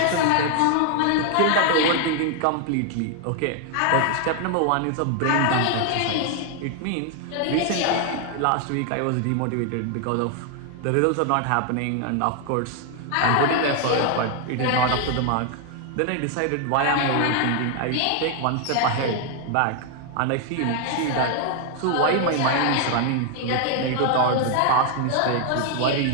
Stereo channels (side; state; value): both; different; correlation 0.00